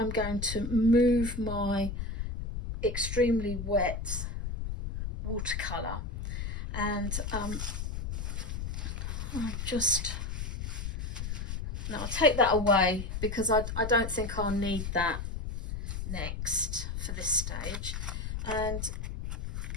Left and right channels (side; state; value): left; noise; rumble, 4 dB below the sound